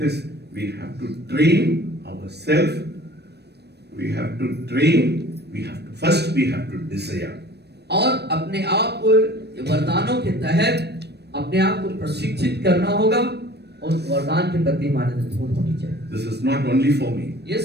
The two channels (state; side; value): late; left; 0.48 ms